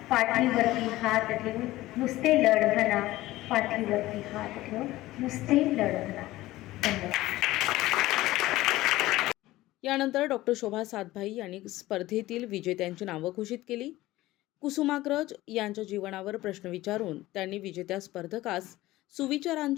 पाठीवरती हात ठेवून नुसते लढ म्हणा. पाठीवरती हात ठेवून नुसते लढ म्हणा. धन्यवाद. यानंतर डॉक्टर शोभा सातभाई यांनी स्पर्धेतील विजेत्यांची नावं घोषित केली. कुसुमाग्रज यांच्या जीवनावर प्रश्न विचारून त्यांनी विजेत्या स्पर्धकास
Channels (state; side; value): quieter; right; 17.2 dB